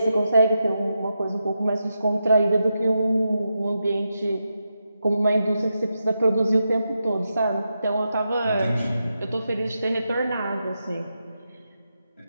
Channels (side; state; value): both; inverted; correlation -0.87